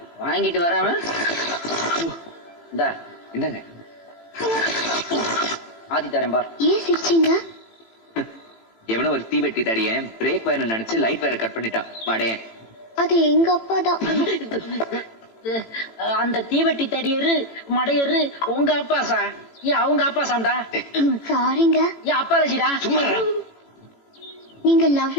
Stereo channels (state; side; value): late; right; 18 ms